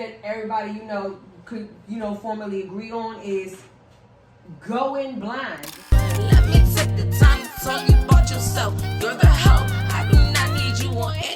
everybody could formally agree on, is going blind. Let me take the time to tell you about yourself. You're the help. I do not need you or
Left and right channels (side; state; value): both; identical; correlation 1.00